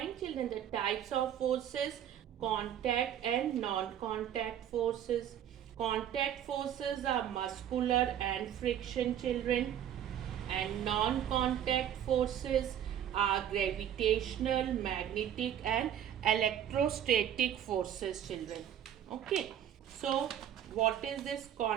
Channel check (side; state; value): left; quieter; 10.2 dB